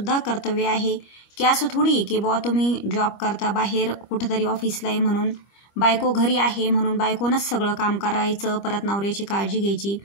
कर्तव्य आहे. की असं थोडी की बुवा तुम्ही जॉब करता बाहेर कुठंतरी ऑफिसला आहे म्हणून, बायको घरी आहे म्हणून बायकोनंच सगळं काम करायचं, परत नवऱ्याची काळजी घ्यायची.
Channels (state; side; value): late; right; 25 ms